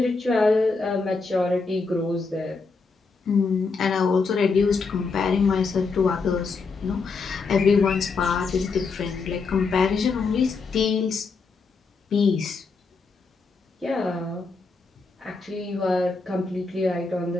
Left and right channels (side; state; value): right; quieter; 4.4 dB